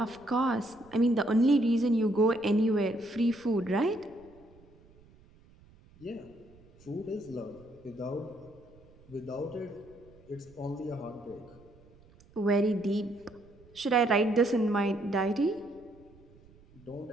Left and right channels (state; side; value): noise; right; rumble, 26 dB below the sound